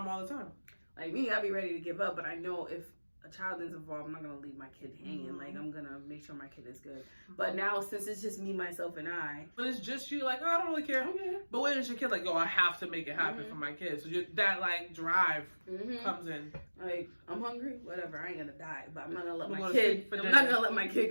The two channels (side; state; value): both; inverted; correlation -1.00